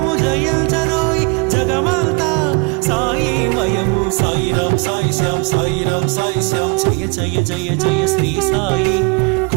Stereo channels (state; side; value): quieter; left; 31.4 dB